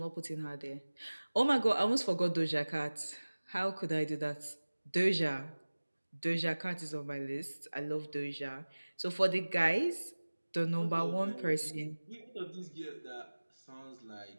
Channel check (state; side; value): inverted; both; correlation -1.00